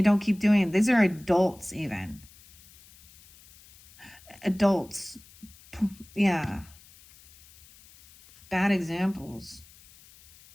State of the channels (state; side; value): noise; left; hiss, 24 dB below the sound